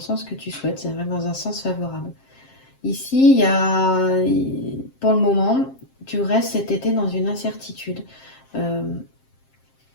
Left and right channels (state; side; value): late; right; 7.5 ms